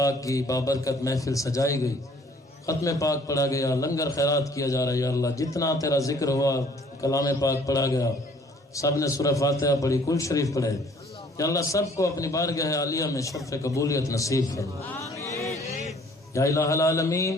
کی بابرکت محفل سجائی گئی، ختم پاک پڑھا گیا، لنگر خیرات کیا جا رہا ہے۔ یا اللہ جتنا تیرا ذکر ہوا، کلام پاک پڑھا گیا، سب نے سورہ فاتحہ پڑھی، کل شریف پڑھے، یا اللہ سب کو اپنی بارگاہ عالیہ میں شرف قبولیت نصیب فرما۔ یا الہ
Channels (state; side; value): normal; both; correlation 0.57